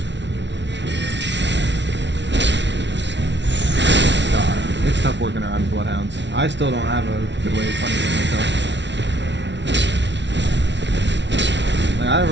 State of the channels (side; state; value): left; late; 0.51 ms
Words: It's tough working around bloodhounds. I still don't have a good way of punishing myself. Like, I